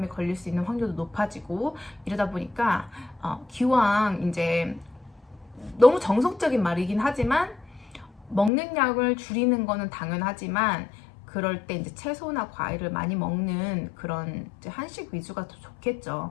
걸릴 수 있는 확률도 높아지고 이러다 보니까 기왕 이제 너무 정석적인 말이긴 하지만 먹는 양을 줄이는 거는 당연하지만 그럴 때 이제 채소나 과일을 많이 먹는 그런 이제 한식 위주가 더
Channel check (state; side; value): drops out; right; at 8.5 s